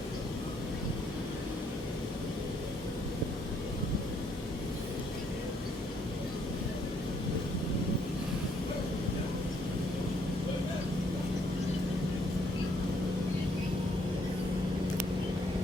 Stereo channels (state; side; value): normal; both; correlation 0.69